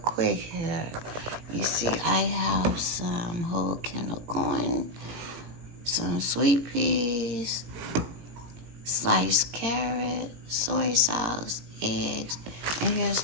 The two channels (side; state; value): left; late; 17 ms